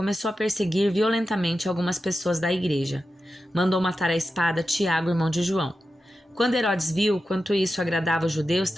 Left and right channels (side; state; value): both; normal; correlation 0.91